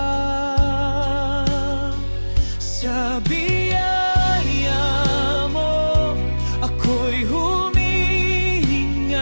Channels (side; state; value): both; inverted; correlation -1.00